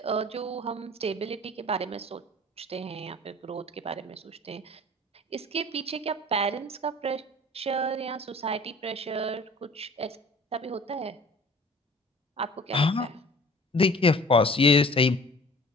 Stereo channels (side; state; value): both; normal; correlation 0.47